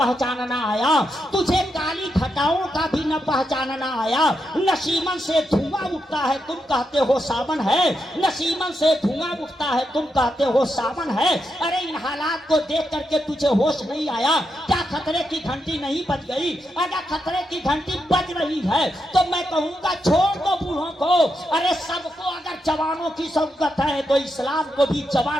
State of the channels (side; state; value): both; normal; correlation 0.84